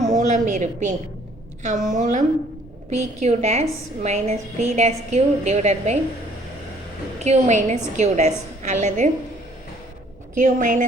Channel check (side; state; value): both; normal; correlation 0.60